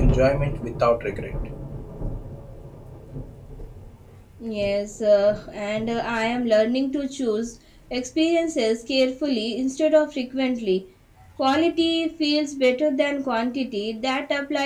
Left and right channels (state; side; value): identical; both; correlation 1.00